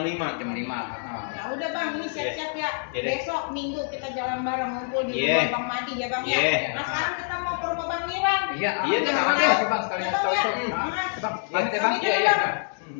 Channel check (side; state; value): right; silent; 61 dB below the other